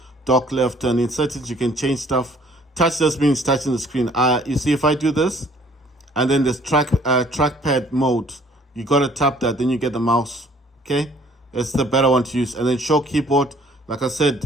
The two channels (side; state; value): both; normal; correlation 0.58